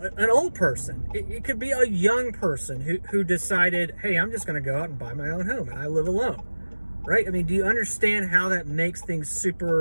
old person. It could be a young person who decided, hey, I'm just going to go out and buy my own home and I live alone, right? I mean, do you understand how that makes things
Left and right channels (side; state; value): both; inverted; correlation -1.00